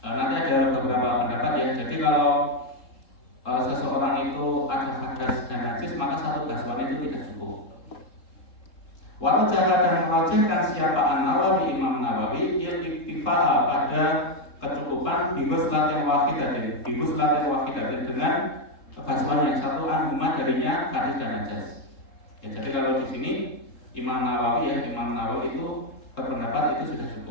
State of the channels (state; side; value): late; right; 3.7 ms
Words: Nanti ada beberapa pendapat ya. Jadi kalau seseorang itu ada hadas dan najis, maka satu basuhan itu tidak cukup. Warajaha, dan merajihkan siapa An-Nawawi, Imam Nawawi, iktifa'a, pada kecukupan biguslatin wahidatin, dengan basuhan yang satu, anhuma, darinya hadis dan najis. Ya, jadi kalau di sini Imam Nawawi itu berpendapat itu sudah